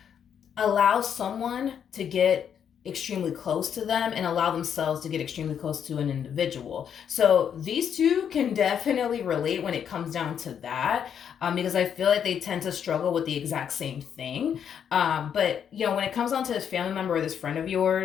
allow someone to get extremely close to them and allow themselves to get extremely close to an individual. So these two can definitely relate when it comes down to that, because I feel like they tend to struggle with the exact same thing. But, you know, when it comes down to this family member or this friend of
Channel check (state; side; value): quieter; right; 8.3 dB